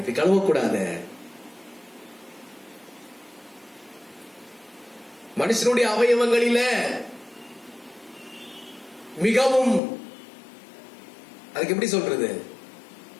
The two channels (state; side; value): drops out; right; at 9.8 s